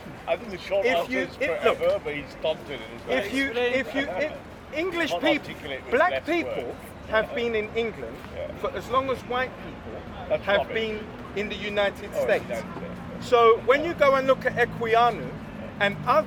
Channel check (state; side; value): identical; both; correlation 1.00